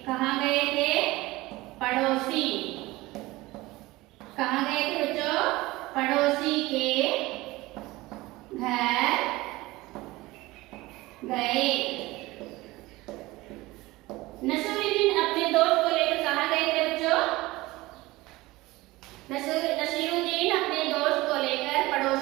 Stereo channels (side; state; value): left; quieter; 19.9 dB